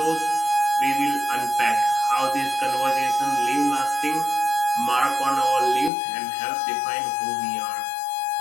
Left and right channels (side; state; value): right; drops out; at 5.9 s